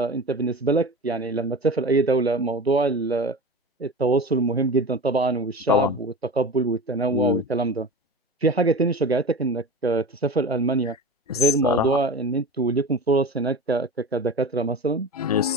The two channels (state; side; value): normal; both; correlation 0.31